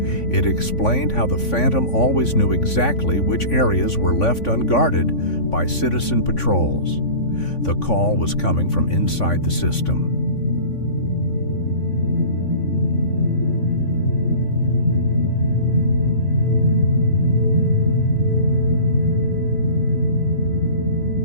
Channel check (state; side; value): late; right; 3.5 ms